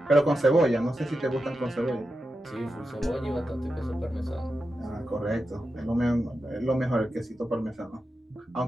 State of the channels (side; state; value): both; normal; correlation 0.90